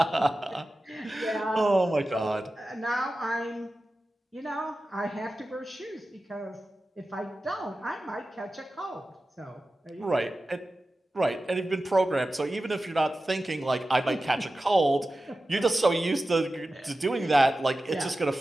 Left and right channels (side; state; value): both; normal; correlation 0.94